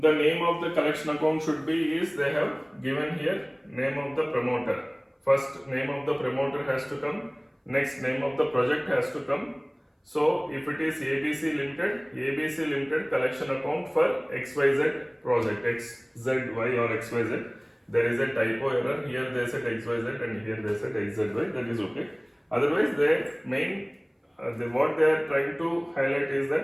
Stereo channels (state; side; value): identical; both; correlation 1.00